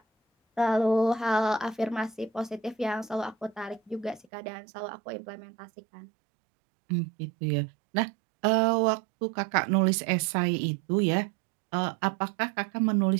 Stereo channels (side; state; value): left; drops out; at 4.2 s